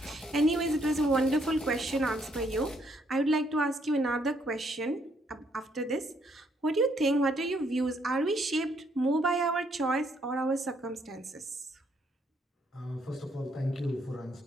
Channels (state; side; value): normal; both; correlation 0.71